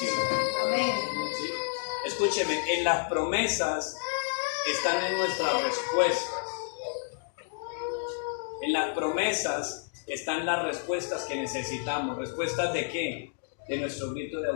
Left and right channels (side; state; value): right; silent; digital silence